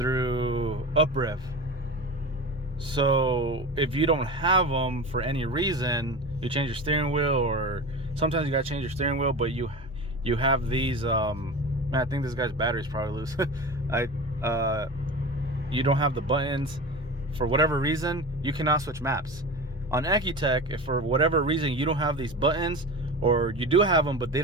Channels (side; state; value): both; normal; correlation 0.30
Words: UpRev. So if you don't have them for any reason, you change your steering wheel, or sometimes you gotta change your steering wheel, but you have these man, I think this guy's battery's probably loose. You don't have the buttons for whatever reason, you cannot switch maps. On Ecutek, if for whatever reason you don't have these buttons, or you do have them but they